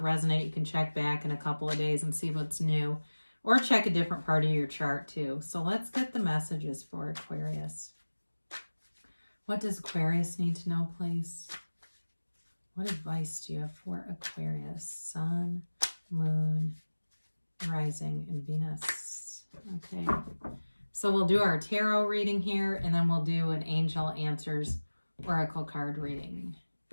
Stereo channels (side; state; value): both; inverted; correlation -1.00